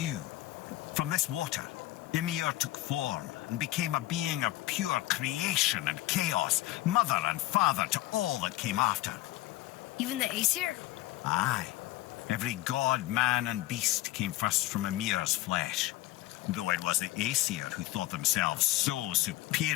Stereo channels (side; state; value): right; quieter; 17.2 dB